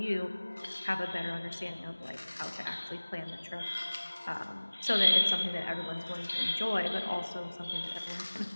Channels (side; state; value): both; inverted; correlation -1.00